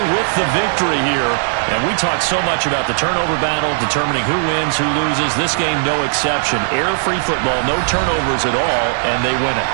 with the victory here. And we talk so much about the turnover battle, determining who wins, who loses. This game, no exception. Air-free football, no turnovers at all, and they win it.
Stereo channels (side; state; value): left; silent; digital silence